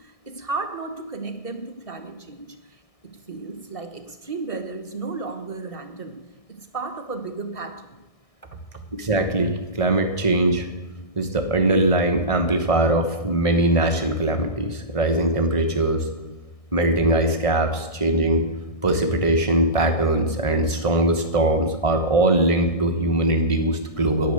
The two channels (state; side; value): late; right; 1.6 ms